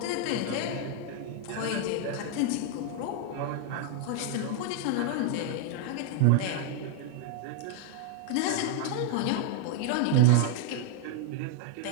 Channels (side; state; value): both; different; correlation 0.00